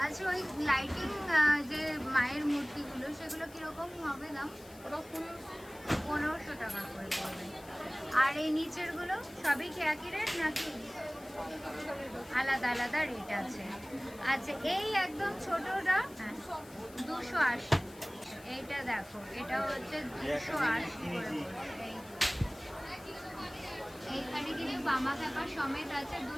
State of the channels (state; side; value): noise; left; hiss, 21 dB below the sound